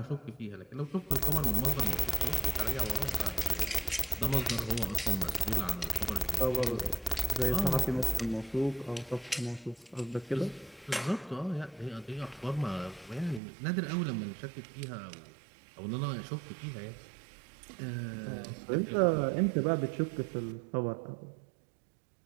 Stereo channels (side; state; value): left; drops out; at 13.4 s